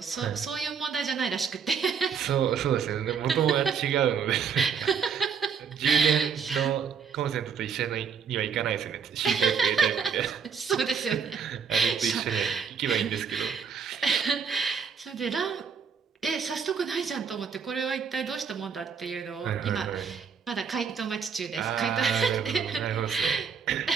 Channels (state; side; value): quieter; left; 6.5 dB